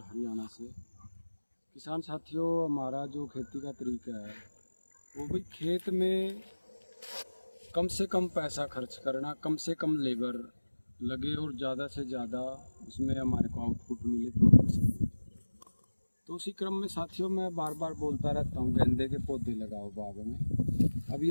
हरियाणा से। किसान साथियों, हमारा जो खेती का तरीका है वो भी खेत में कम से कम पैसा खर्च करना, कम से कम लेबर लगे और ज़्यादा से ज़्यादा उसमें हमारे को आउटपुट मिले, प्रोडक्शन मिले। तो उसी क्रम में साथियों मैं बार बार बोलता रहता हूँ, गेंदे के पौधे लगाओ बाग में। अभी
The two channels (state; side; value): inverted; both; correlation -1.00